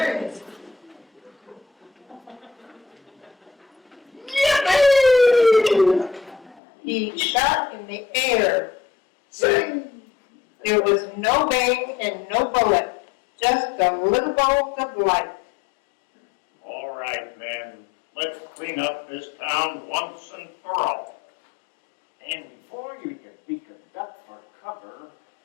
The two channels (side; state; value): right; drops out; at 6.6 s